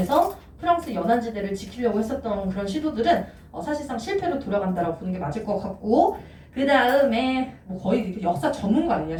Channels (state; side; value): identical; both; correlation 1.00